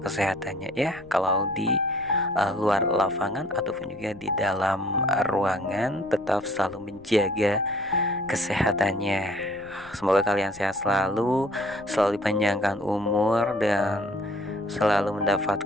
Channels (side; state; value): left; noise; rumble, 23 dB below the sound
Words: ya. Kalau di luar lapangan ataupun juga di dalam ruangan, tetap selalu menjaga kesehatannya. Semoga kalian sehat selalu dipanjangkan umur, dan selalu